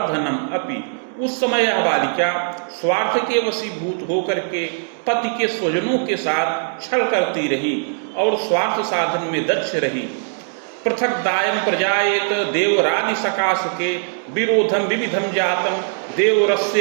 अपि। उस समय यह बालिका स्वार्थ के वशीभूत होकर के पति के स्वजनों के साथ छल करती रही और स्वार्थ साधन में दक्ष रही। पृथक दायम प्रजाएत देवरादि सकाश के विरोधम विविधम जातम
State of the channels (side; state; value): left; silent; digital silence